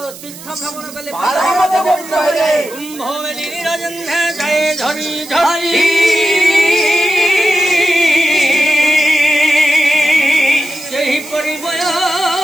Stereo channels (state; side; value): noise; right; hiss, 16 dB below the sound